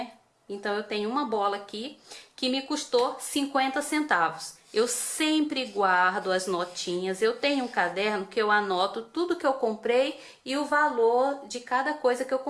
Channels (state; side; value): identical; both; correlation 1.00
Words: Então eu tenho uma bola aqui que me custou 50 centavos. Eu sempre guardo as notinhas. Eu tenho um caderno que eu anoto tudo que eu comprei e o valor de cada coisa que eu